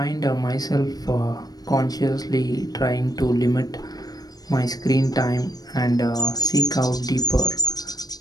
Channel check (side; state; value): right; late; 0.19 ms